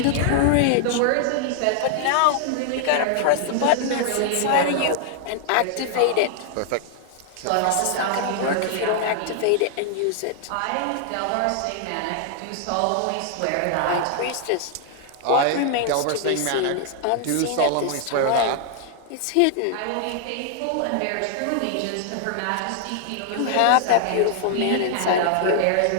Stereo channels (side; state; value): both; different; correlation 0.00